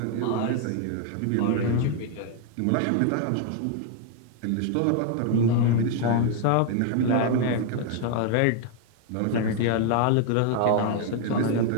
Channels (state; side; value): different; both; correlation 0.00